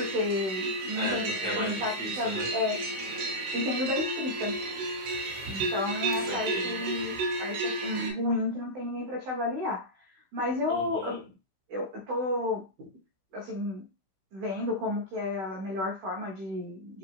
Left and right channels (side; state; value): left; late; 16 ms